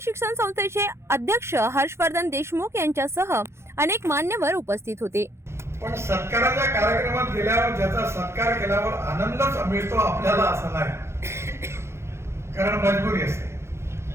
शिक्षण संस्थेचे अध्यक्ष हर्षवर्धन देशमुख यांच्यासह अनेक मान्यवर उपस्थित होते। पण सत्काराच्या कार्यक्रमात गेल्यावर ज्याचा सत्कार केल्यावर आनंदच मिळतो आपल्याला असं नाही, कारण मजबुरी असते।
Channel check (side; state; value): left; late; 0.13 ms